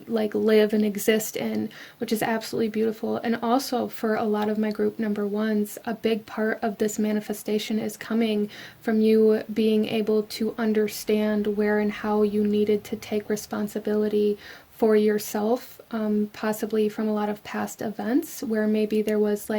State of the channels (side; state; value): both; identical; correlation 1.00